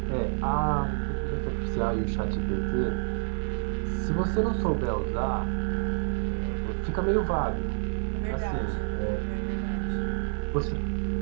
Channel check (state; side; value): silent; left; 59 dB below the other